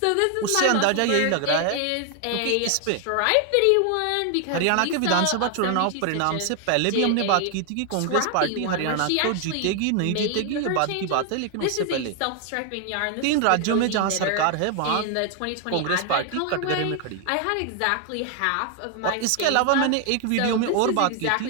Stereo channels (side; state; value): both; different; correlation 0.00